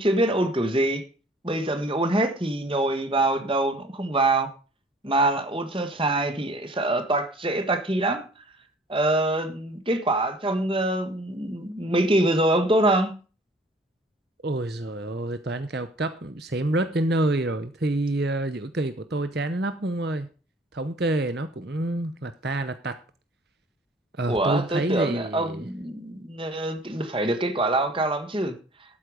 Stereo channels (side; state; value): both; normal; correlation 0.52